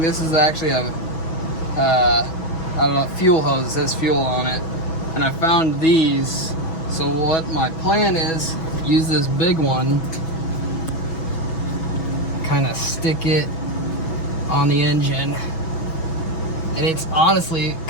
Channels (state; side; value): late; right; 6.1 ms